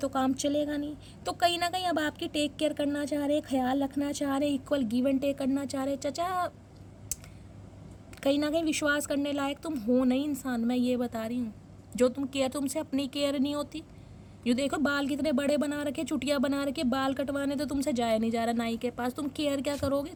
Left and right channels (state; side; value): identical; both; correlation 1.00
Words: काम चलेगा नहीं। तो कहीं ना कहीं अब आपकी टेक केयर करना चाह रहे हैं, ख्याल रखना चाह रहे हैं, इक्वल गिव एंड टेक करना चाह रहे हैं। चचा कहीं ना कहीं विश्वास करने लायक तुम हो नहीं इंसान, मैं ये बता रही हूँ। जो तुम केयर, तुमसे अपनी केयर नहीं होती। ये देखो बाल कितने बड़े बना रखे, चुटिया बना रखे, बाल कटवाने तो तुमसे जाया नहीं जा रहा नाई के पास, तुम केयर क्या करोगे,